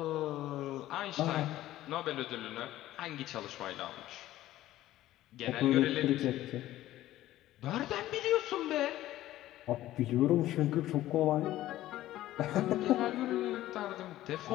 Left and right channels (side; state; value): right; quieter; 14.6 dB